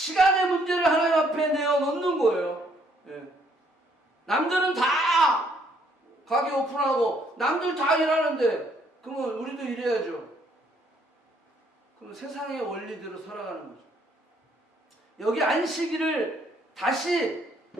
문제를 하나님 앞에 내어놓는 거예요. 남들은 다 가게 오픈하고 남들 다 일하는데 그러면 우리도 일해야죠. 그럼 세상의 원리대로 살아가는 거죠. 여기 안식일을 다시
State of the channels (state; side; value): normal; both; correlation 0.67